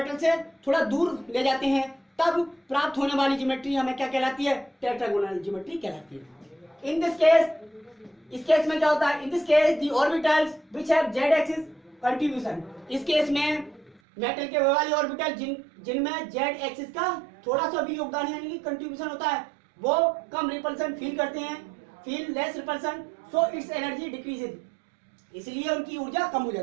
से थोड़ा दूर ले जाते हैं, तब प्राप्त होने वाली ज्योमेट्री हमें क्या कहलाती है, टेट्रागोनल ज्योमेट्री कहलाती है। इन दिस केस, इस केस में क्या होता है, in this case the orbitals which have Z axis contribution, इस केस में मेटल के वाले ऑर्बिटल जिनमें जेड एक्सिस का थोड़ा सा भी योगदान यानी कि कंट्रीब्यूशन होता है, वो कम रिपल्सन फील करते हैं, feel less repulsion, so it's energy decreases, इसलिए उनकी ऊर्जा कम हो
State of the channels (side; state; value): left; drops out; at 14.0 s